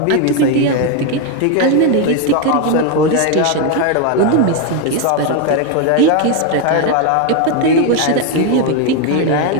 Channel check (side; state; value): both; different; correlation 0.02